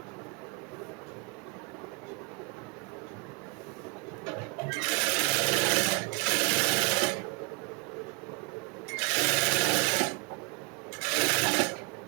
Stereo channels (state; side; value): quieter; left; 30.3 dB